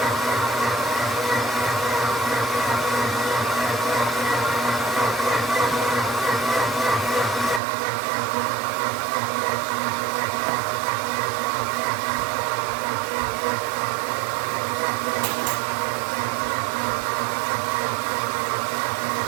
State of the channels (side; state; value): left; drops out; at 7.6 s